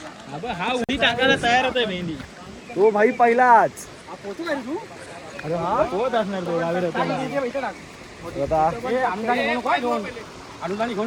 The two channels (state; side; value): identical; both; correlation 1.00